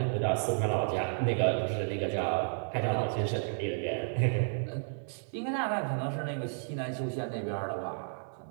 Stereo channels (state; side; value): silent; left; 56 dB below the other